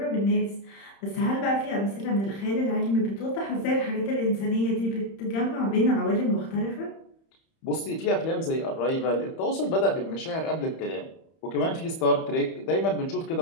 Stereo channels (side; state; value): right; late; 31 ms